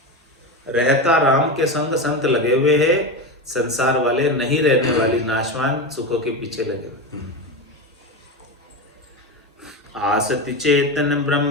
रहता राम के संग संत लगे हुए हैं, संसार वाले नहीं रहने वाली नाशवान सुखों के पीछे लगे हुए। आसति चेतन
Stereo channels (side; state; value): both; normal; correlation 0.19